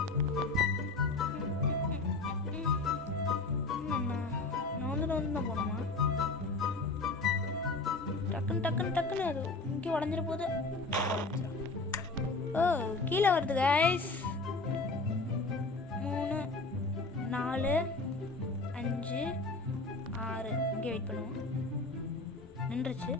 நான் தான் போகணுமா? டக்குன்னு அது இங்கே உடஞ்சிட போகுது. ஓ கீழே வருது கைஸ். 3 4 5 6 இங்கே வெயிட் பண்ணுவோம். நின்றுச்சு.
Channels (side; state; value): right; quieter; 3.4 dB